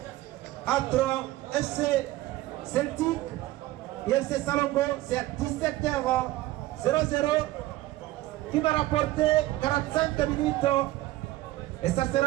entre FC Celtic et FC Salongo. C'est à 17h00 qui va rapporter 45 minutes. Et ça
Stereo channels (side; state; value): left; quieter; 16.9 dB